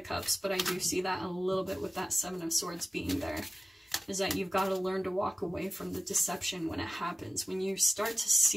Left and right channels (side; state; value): both; normal; correlation 0.96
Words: Cups, but I do see that a little bit with that Seven of Swords being there, is that you've got to learn to walk away from the deception when it happens. When you start to